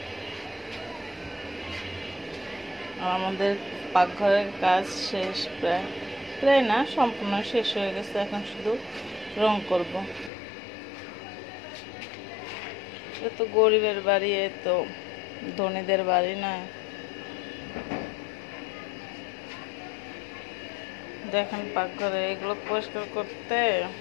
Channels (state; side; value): drops out; right; at 10.3 s